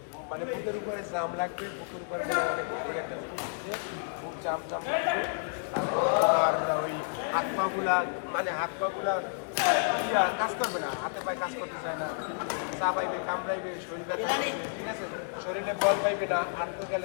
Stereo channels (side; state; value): right; silent; digital silence